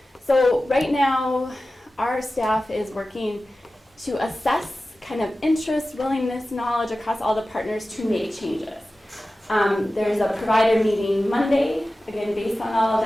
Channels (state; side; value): normal; both; correlation 0.95